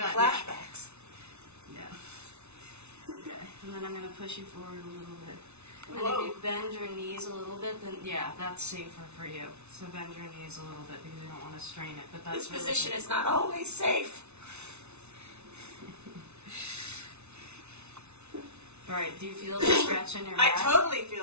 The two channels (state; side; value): late; left; 0.81 ms